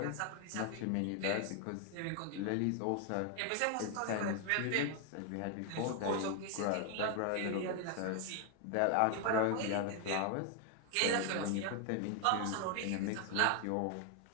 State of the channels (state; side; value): different; both; correlation 0.00